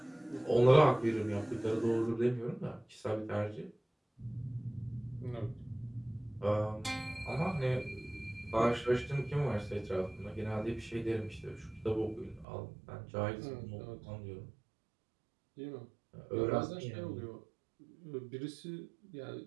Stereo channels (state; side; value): drops out; left; at 12.5 s